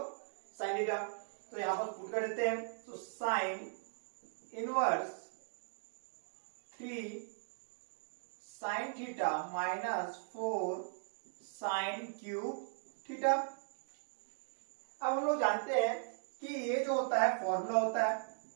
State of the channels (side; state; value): left; silent; digital silence